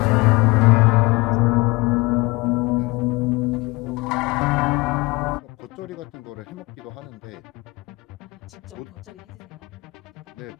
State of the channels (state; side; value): quieter; right; 23.9 dB